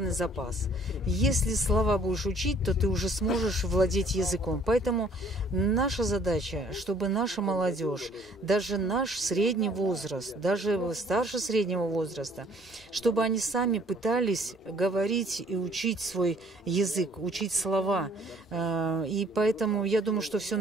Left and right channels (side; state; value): both; normal; correlation 0.59